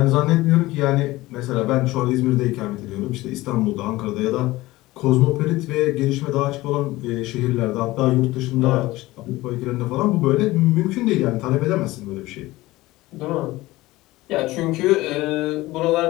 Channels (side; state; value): right; quieter; 18.7 dB